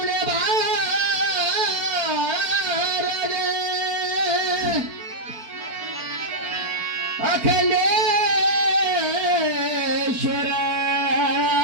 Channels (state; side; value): late; left; 4.4 ms